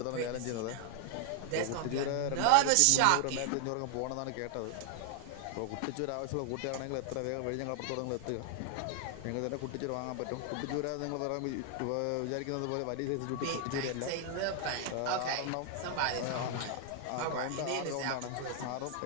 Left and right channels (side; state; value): both; different; correlation 0.00